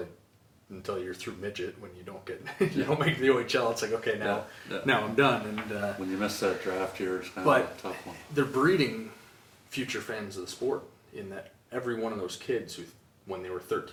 you're through midget. When you don't get you don't make the OHL, it's like, okay, now I'm done. And When you miss that draft year, it's kind but of a tough one. they're breeding future fans of the sport in that every one of those kids who, when they were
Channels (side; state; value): both; identical; correlation 1.00